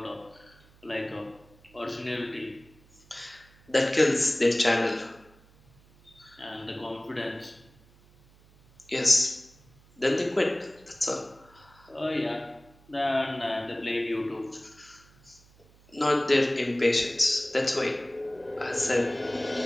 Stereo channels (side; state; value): right; noise; hum, 28 dB below the sound